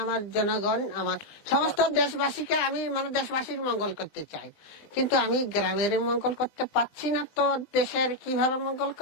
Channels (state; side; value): late; right; 20 ms